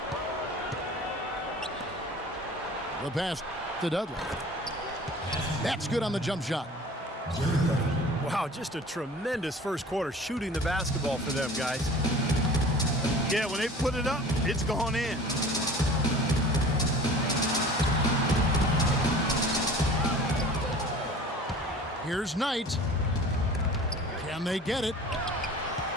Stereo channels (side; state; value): both; normal; correlation 0.43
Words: The pass to Dudley. That's good on the jump shot. Wow, just a tremendous first quarter shooting the basketball for them, guys. Yeah, when they put it up, it's gone in. Here's Knight. Can they get it?